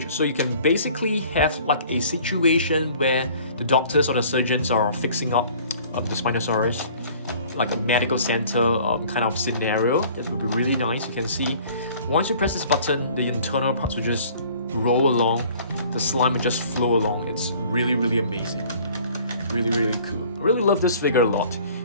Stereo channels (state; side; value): inverted; both; correlation -0.51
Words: So you can basically have like a situation where the doctors or the surgeons are fixing up the Spinosaurus, like a medical center kind of scenario. That would be really nice. You can see once you press this button, the internal parts will just roll along. The slime will just flow along. It's really, really amazing. Really, really cool. I really love this figure a lot.